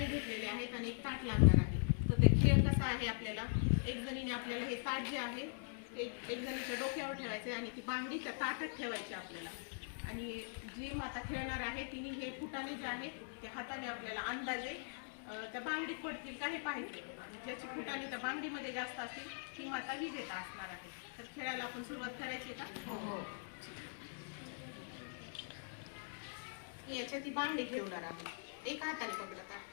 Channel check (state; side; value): silent; right; digital silence